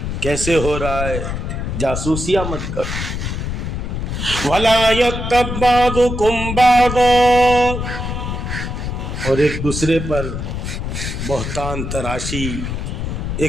کیسے ہو رہا ہے, جاسوسیاں مت کرو. ولا یغتب بعضکم بعضا, اور ایک دوسرے پر بہتان تراشی,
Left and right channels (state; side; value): noise; left; rumble, 4 dB below the sound